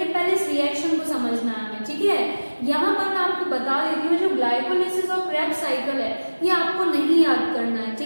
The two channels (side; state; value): both; inverted; correlation -1.00